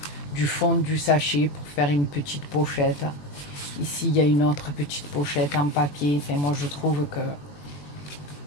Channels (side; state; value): right; late; 21 ms